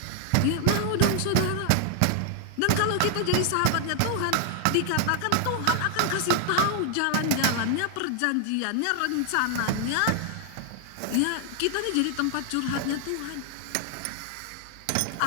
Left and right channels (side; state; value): both; different; correlation 0.00